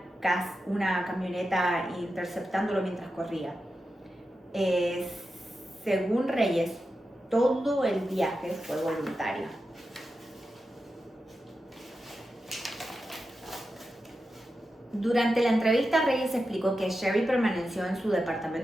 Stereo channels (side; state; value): both; normal; correlation 0.90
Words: camioneta interceptándolo mientras corría. Según Reyes, todo el viaje fue voluntario. Durante la entrevista, Reyes explicó que Sherry permaneció en su